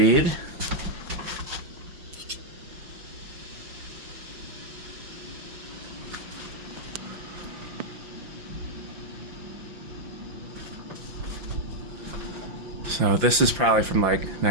So this is probably from like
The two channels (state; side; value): late; left; 6.0 ms